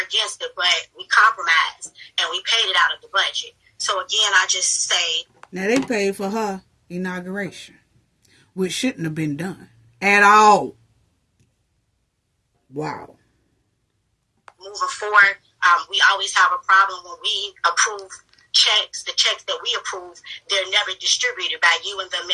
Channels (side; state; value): both; identical; correlation 1.00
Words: against it, but we compromised and we paid it out of the budget. So again, I just say. Now they paid for her inauguration, which shouldn't have been done at all. Wow. Moving forward, we always have a problem when we approve checks. The checks that we approve, they're never distributed by you and the